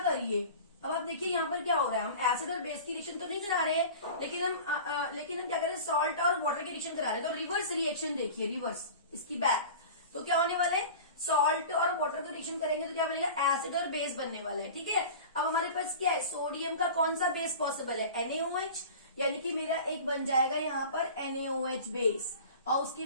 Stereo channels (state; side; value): inverted; both; correlation -0.37